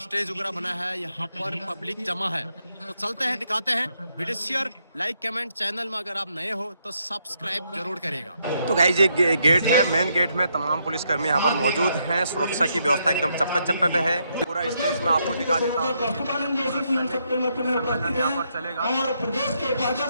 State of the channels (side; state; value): both; inverted; correlation -0.77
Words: स्टेज वगैरह बना है, यहाँ पर पब्लिक जमा है। तो चलते हैं, दिखाते हैं। Video share, like, comment. Channel में अगर आप नए हो तो सब्सक्राइब जरूर करेगा। तो गाइस ये गेट है, मेन गेट में तमाम पुलिसकर्मी यहाँ पर मौजूद हैं। सुरक्षा की व्यवस्था एकदम चप्पे चप्पे पे है। पूरा स्टेज में आपको दिखा देता हूँ। सम्मेलन यहाँ पर चलेगा।